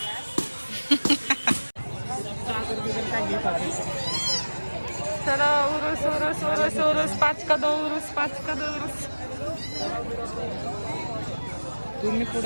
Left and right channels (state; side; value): inverted; both; correlation -1.00